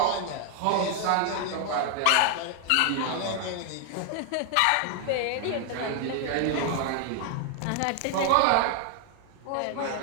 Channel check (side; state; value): both; different; correlation 0.00